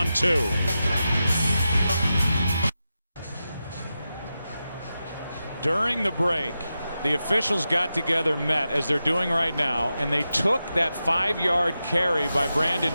2. During the break, the officials got together, met as they're doing right now, and they took that 5-yard carry by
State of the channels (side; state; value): both; inverted; correlation -0.91